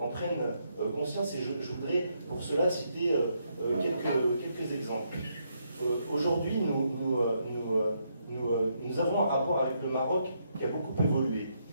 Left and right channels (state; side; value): inverted; both; correlation -0.77